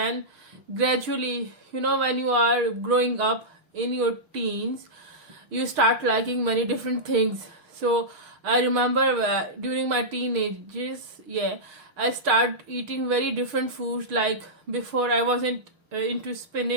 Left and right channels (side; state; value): left; late; 6.5 ms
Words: gradually, when you are growing up in your teens, you start liking many different things. So I remember during my teenagers, I start eating very different foods. Like before, I wasn't into